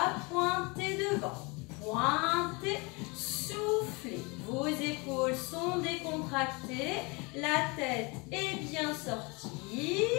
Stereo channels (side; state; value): right; quieter; 28.2 dB